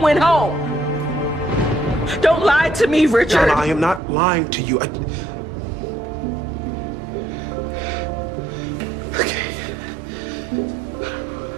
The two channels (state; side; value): drops out; left; at 4.0 s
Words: home. Don't lie to me, Richard. Donna, I am not lying to you.